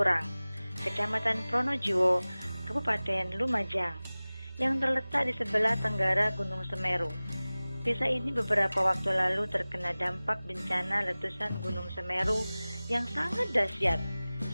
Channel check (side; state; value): both; inverted; correlation -0.98